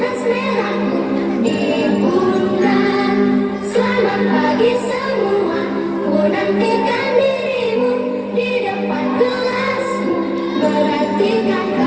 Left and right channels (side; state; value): both; identical; correlation 1.00